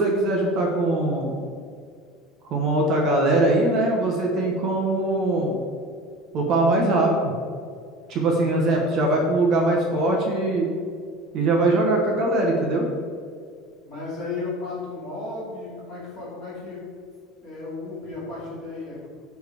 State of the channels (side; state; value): both; normal; correlation 0.38